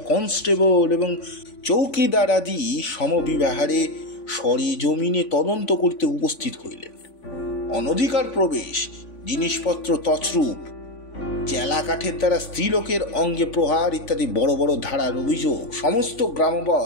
কনস্টেবল এবং চৌকিদার আদি সমবিবাহারে সরেজমিনে তদন্ত করিতে উপস্থিত হইলেন। অনধিকার প্রবেশ, জিনিসপত্র তছরূপ, চেলা কাঠের দ্বারা স্ত্রীলোকের অঙ্গে প্রহার ইত্যাদি বড় বড় ধারার অভিযোগ সমস্ত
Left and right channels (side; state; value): right; late; 3.5 ms